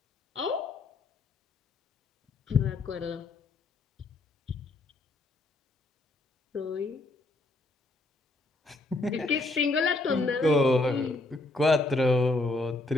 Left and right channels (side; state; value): right; quieter; 3.0 dB